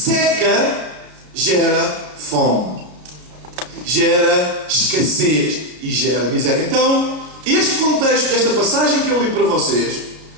gera fome, gera escassez e gera miséria. Então, este contexto desta passagem que eu li para vocês,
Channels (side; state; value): left; late; 33 ms